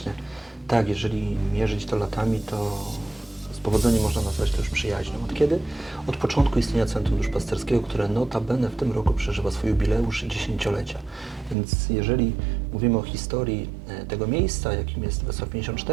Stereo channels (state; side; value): drops out; left; at 11.6 s